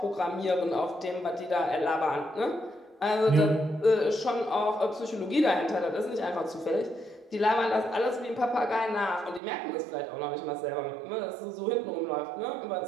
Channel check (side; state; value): left; drops out; at 9.4 s